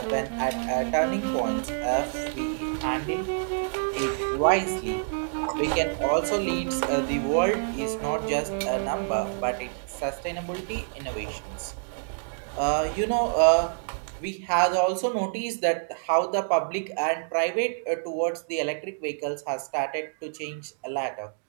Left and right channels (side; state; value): left; silent; digital silence